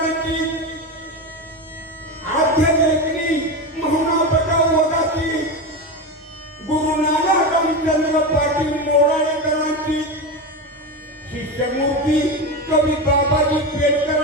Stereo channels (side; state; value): both; normal; correlation 0.19